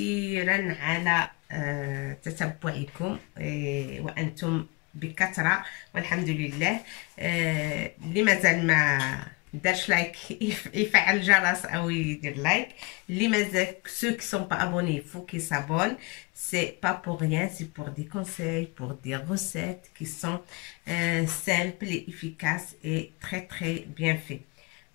على تتبعكم وأنتم بكثرة والحمد لله. اللي مازال ما دارش لايك يفعل الجرس او يدير لايك. اللي مازال ceux qui sont pas abonnés, il faut qu'ils s'abonnent. C'est pas pour rien, c'est pour des conseils, pour des recettes qui sont simples et efficaces et très bien fait.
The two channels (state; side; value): quieter; right; 26.9 dB